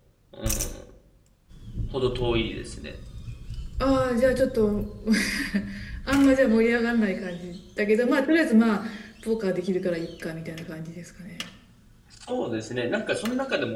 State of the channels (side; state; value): both; identical; correlation 1.00